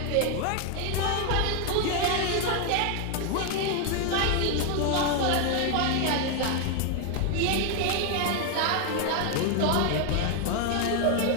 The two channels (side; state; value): both; different; correlation 0.01